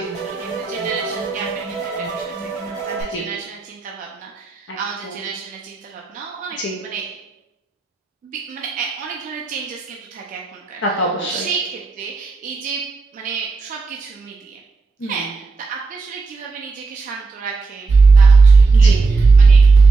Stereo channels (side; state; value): left; quieter; 4.1 dB